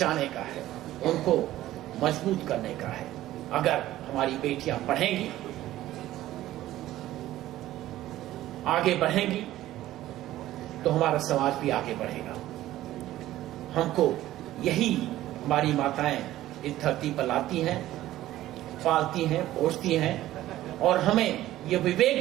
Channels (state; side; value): quieter; left; 14.6 dB